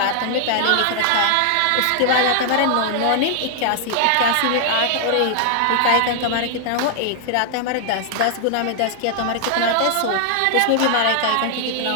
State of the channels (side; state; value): both; different; correlation 0.00